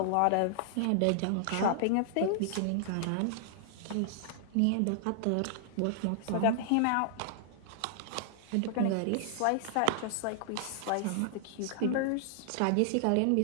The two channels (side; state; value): both; different; correlation -0.01